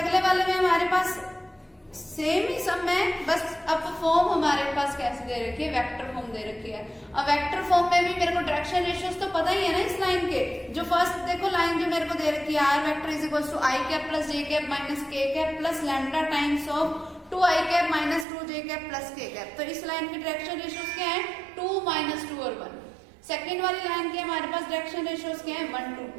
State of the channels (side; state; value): left; drops out; at 18.2 s